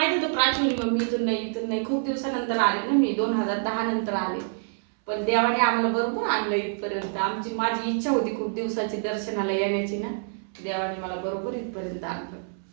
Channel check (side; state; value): left; silent; 61 dB below the other